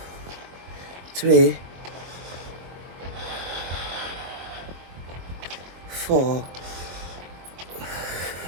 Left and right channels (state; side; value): late; left; 23 ms